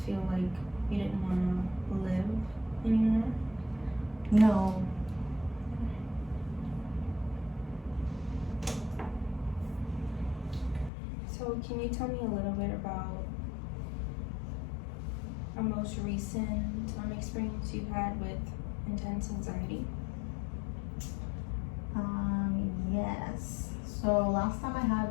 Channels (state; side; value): drops out; right; at 10.9 s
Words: feel like you didn't want to live anymore? No. So can you tell me a little bit about a most recent experience you've had with intense anxiety? Yes. So last time I